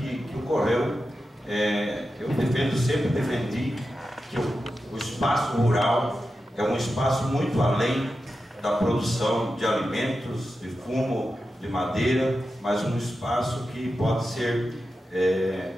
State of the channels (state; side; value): normal; both; correlation 0.91